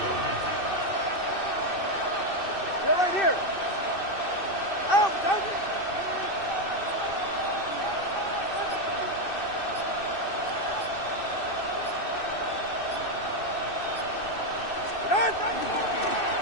You're right here. Out.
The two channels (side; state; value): right; late; 2.6 ms